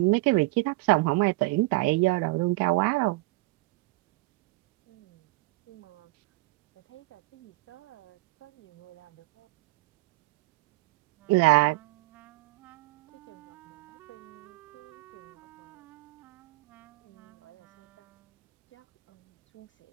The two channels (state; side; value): quieter; left; 22.4 dB